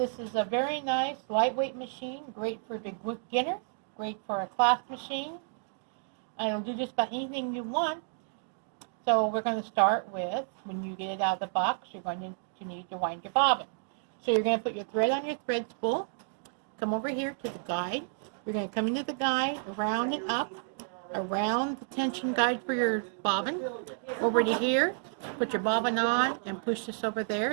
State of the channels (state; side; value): silent; left; digital silence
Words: is a very nice lightweight machine, great for beginner, great for a class machine. It'll do just about anything you want. So we're going to start with, when you get it out of the box, you're going to need to wind your bobbin. So you're going to put your thread on your thread spool, come over here to the guide. You're going to come into the guide, around and up, around the tension guide for your bobbin, over to here, put your bobbin on and push this over